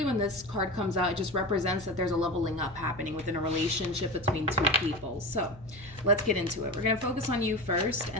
when this card comes out, it just represents that there's a leveling up happening within a relationship between two people. So let's get into it. We're going to focus on you first,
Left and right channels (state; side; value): noise; left; hum, 19 dB below the sound